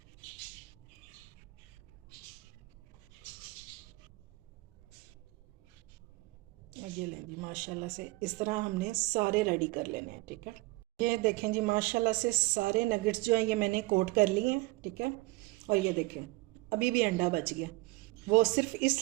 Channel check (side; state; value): left; quieter; 22.0 dB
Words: ये लें जी माशाल्लाह से इस तरह हमने सारे रेडी कर लेने हैं, ठीक है। ये देखें जी माशाल्लाह से सारे नगेट्स जो हैं ये मैंने कोट कर लिए हैं, ठीक है। और ये देखें अभी भी अंडा बच गया, वो सिर्फ